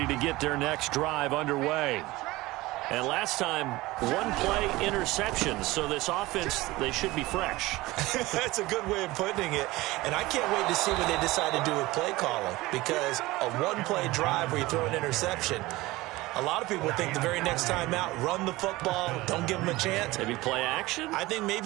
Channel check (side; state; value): left; quieter; 19.7 dB